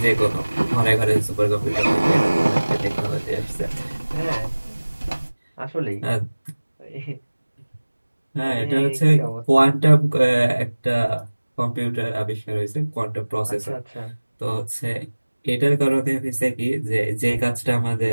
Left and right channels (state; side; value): inverted; both; correlation -1.00